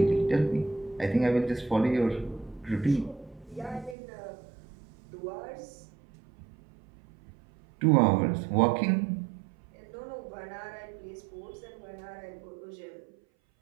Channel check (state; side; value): drops out; left; at 4.0 s